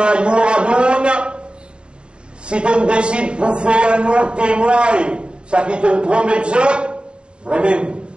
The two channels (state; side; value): late; left; 0.052 ms